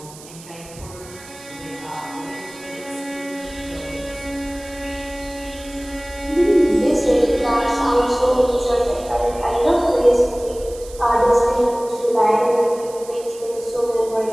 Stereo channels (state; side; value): noise; right; hiss, 18 dB below the sound